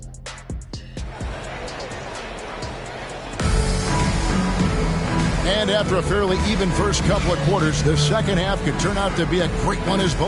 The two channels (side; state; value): both; identical; correlation 1.00